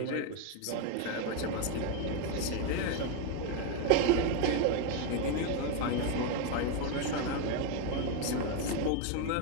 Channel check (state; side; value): different; both; correlation 0.02